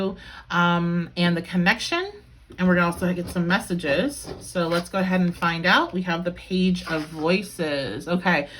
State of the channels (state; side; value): identical; both; correlation 1.00